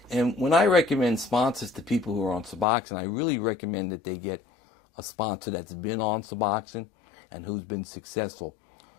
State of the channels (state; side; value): drops out; right; at 2.7 s